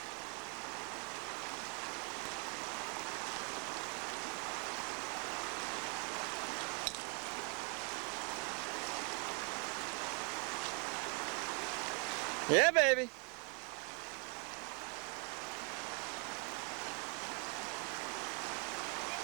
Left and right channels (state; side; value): quieter; left; 36.0 dB